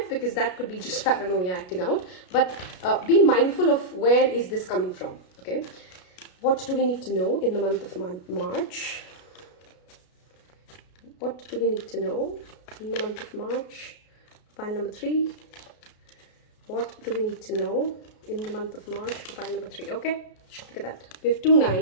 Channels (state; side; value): late; right; 33 ms